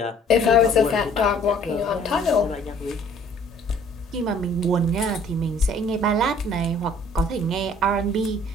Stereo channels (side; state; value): both; normal; correlation 0.55